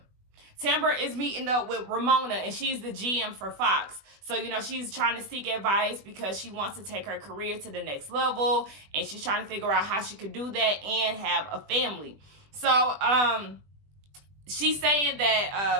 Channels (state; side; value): late; left; 20 ms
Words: Tamaras is meeting up with Ramona, and she's the GM for Fox. So, she's trying to seek advice because she wants to take her career to the next level, and she's trying to figure out how she could do that and have a family. So, she's saying